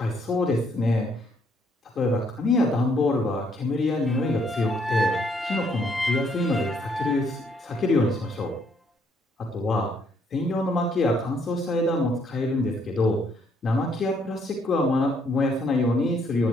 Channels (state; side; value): normal; both; correlation 0.69